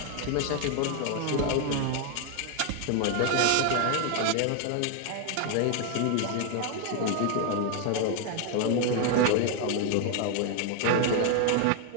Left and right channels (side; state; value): both; different; correlation 0.00